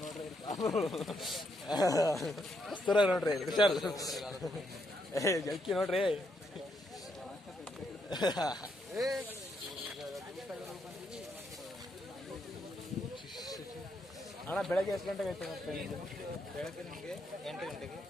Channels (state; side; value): normal; both; correlation 0.77